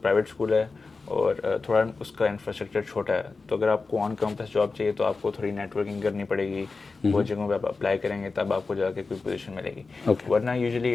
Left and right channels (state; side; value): quieter; right; 4.1 dB